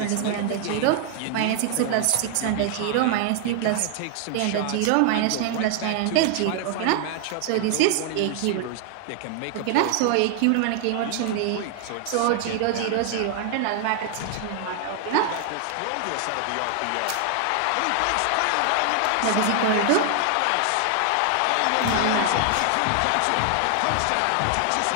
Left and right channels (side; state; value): both; different; correlation 0.00